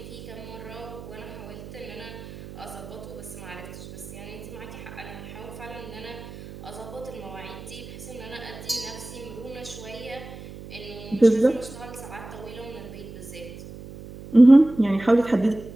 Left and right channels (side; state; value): right; noise; hum, 13 dB below the sound